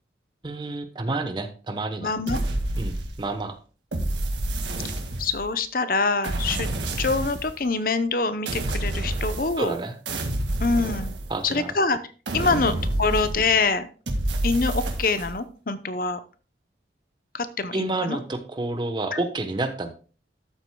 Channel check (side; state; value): both; normal; correlation 0.33